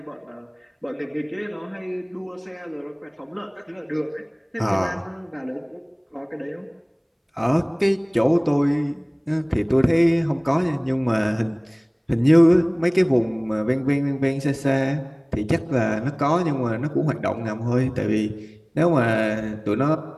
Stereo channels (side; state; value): both; identical; correlation 1.00